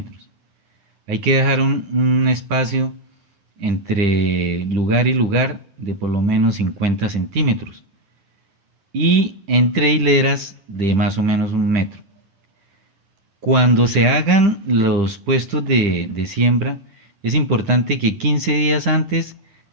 Hay que dejar un espacio entre lugar y lugar de por lo menos 50 centímetros y entre hileras de más o menos 1 metro. Cuando se hagan los puestos de siembra, es importante que 15 días antes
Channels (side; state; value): left; late; 10 ms